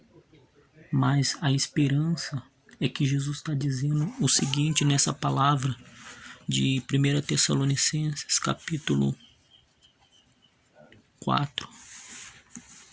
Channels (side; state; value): both; identical; correlation 1.00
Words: Mas a esperança é que Jesus está dizendo o seguinte nessa palavra de 1 Tessalonicenses, capítulo 4,